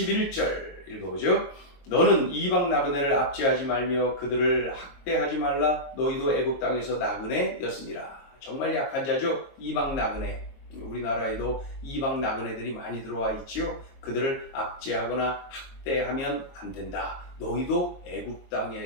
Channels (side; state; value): right; late; 22 ms